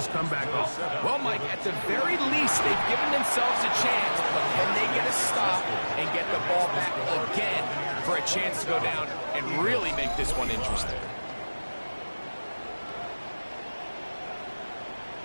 comeback off. Well, Mike, at the very least, they've given themselves a chance, but can they get a stop and get the ball back again for a chance to go down and really make this one interesting.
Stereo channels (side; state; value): both; inverted; correlation -1.00